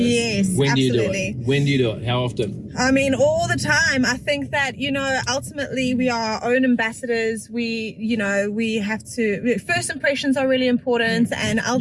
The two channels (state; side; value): identical; both; correlation 1.00